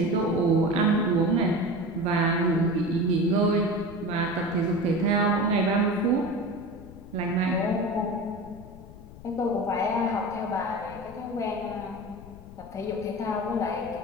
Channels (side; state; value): left; noise; rumble, 17 dB below the sound